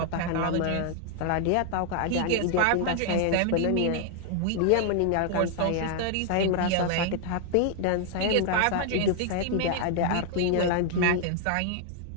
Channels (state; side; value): different; both; correlation 0.00